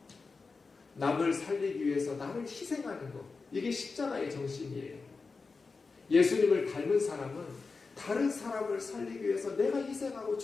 남을 살리기 위해서 나를 희생하는 것. 이게 십자가의 정신이에요. 예수님을 닮은 사람은 다른 사람을 살리기 위해서 내가 희생하고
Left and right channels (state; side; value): quieter; right; 4.3 dB